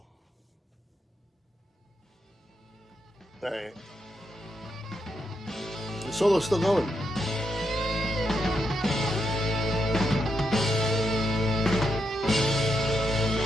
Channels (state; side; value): normal; both; correlation 0.82